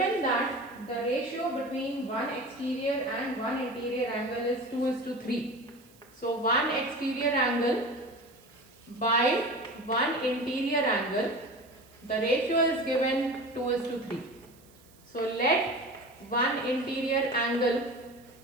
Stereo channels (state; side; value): noise; right; hiss, 28 dB below the sound